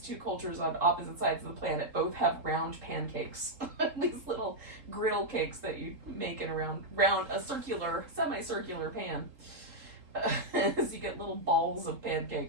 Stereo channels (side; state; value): left; late; 3.8 ms